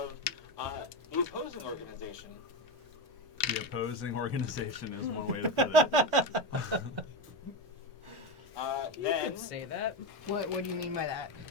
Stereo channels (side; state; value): both; normal; correlation 0.16